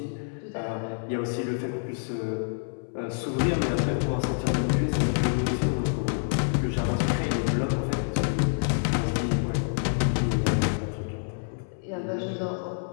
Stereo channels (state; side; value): silent; right; 60 dB below the other